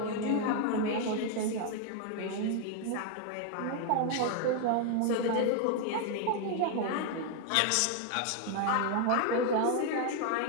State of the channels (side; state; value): both; different; correlation 0.00